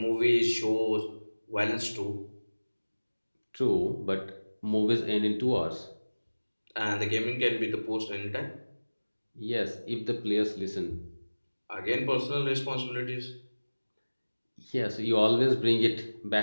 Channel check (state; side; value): inverted; both; correlation -1.00